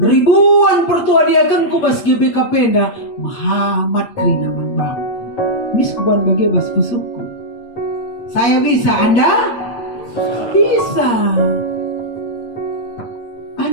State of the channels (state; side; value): late; right; 8.7 ms